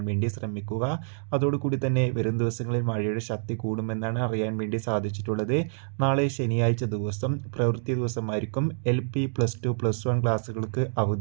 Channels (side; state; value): left; silent; digital silence